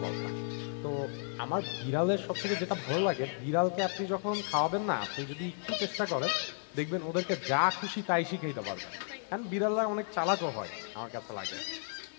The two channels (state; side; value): silent; right; 55 dB below the other